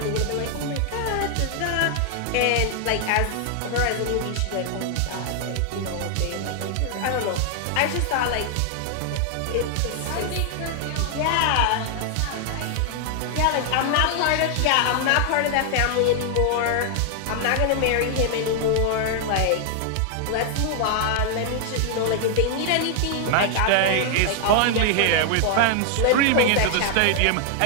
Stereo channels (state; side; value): different; both; correlation 0.00